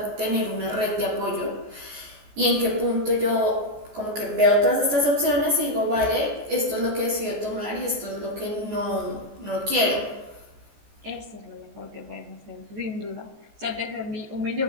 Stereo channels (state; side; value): late; left; 14 ms